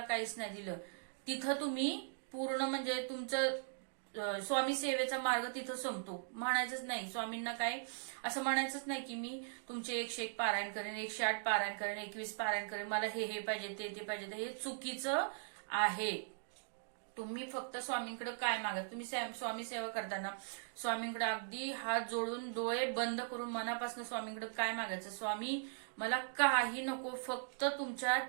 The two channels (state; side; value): silent; left; digital silence